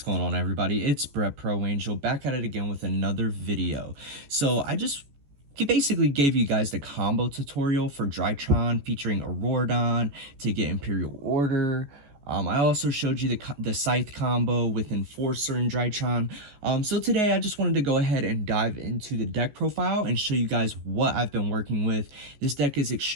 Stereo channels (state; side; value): late; left; 14 ms